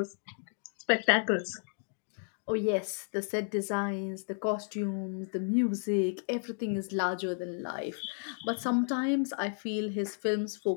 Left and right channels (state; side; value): silent; right; 56 dB below the other